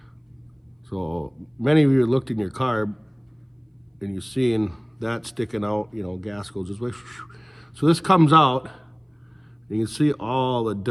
So many of you looked in your carb and you've seen that sticking out, you know, gas goes this way. So this comes out, and you can see all the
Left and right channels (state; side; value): identical; both; correlation 1.00